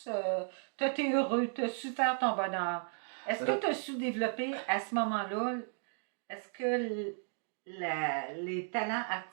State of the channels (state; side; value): silent; left; 55 dB below the other